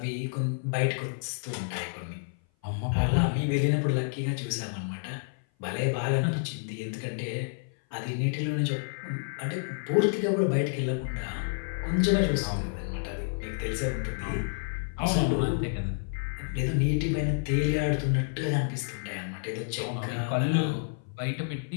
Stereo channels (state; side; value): silent; right; 56 dB below the other